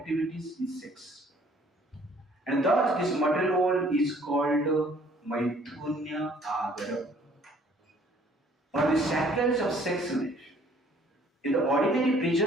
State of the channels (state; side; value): normal; both; correlation 0.59